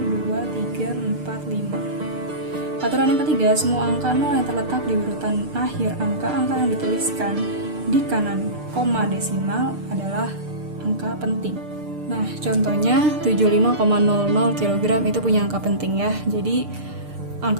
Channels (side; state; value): left; late; 6.6 ms